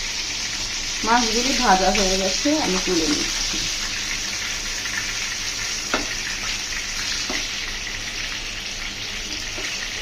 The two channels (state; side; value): identical; both; correlation 1.00